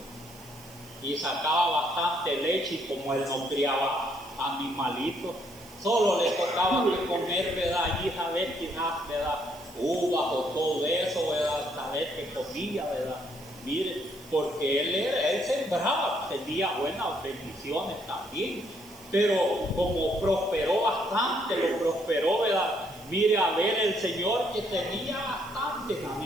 y sacaba bastante leche, y como él no criaba animalitos, solo le tocaba que comer, ¿verdad? Allí saber quizás, ¿verdad? Uvas o todo eso, ¿verdad? Saber que comía, ¿verdad? Mire, porque él sembraba, tenía buenas bendiciones también, pero como prosperó bastante, lo prosperó, ¿verdad? Mire, a ver el Señor que tenía bastantes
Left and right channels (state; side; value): noise; right; hiss, 21 dB below the sound